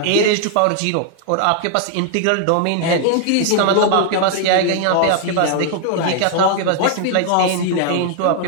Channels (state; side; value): different; both; correlation 0.00